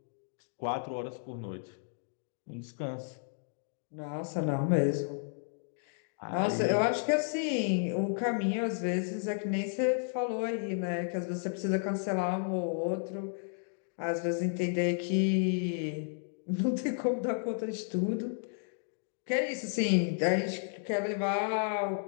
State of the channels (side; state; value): right; silent; digital silence